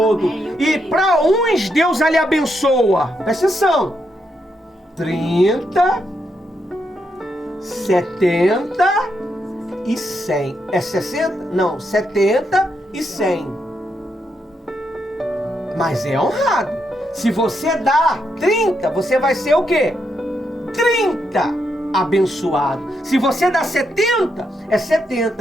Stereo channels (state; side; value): normal; both; correlation 0.81